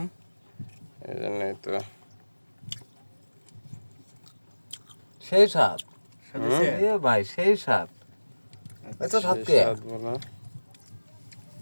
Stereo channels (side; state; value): both; inverted; correlation -1.00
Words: এই জন্যই তো। সেই স্বাদ সাথে এ ভাই, সেই স্বাদ। এত স্বাদ কে? স্বাদ বলা।